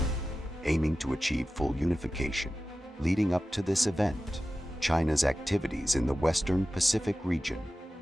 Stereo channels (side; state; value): both; normal; correlation 0.94